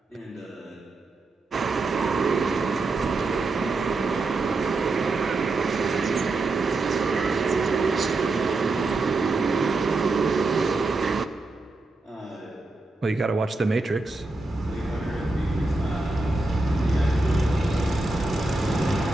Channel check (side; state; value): left; quieter; 3.2 dB